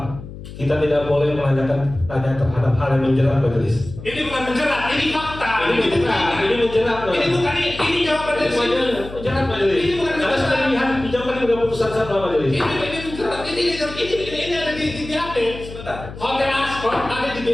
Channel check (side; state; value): left; noise; hum, 13 dB below the sound